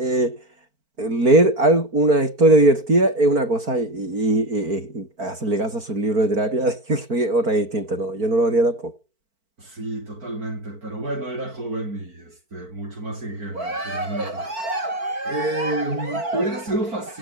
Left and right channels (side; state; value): left; late; 4.5 ms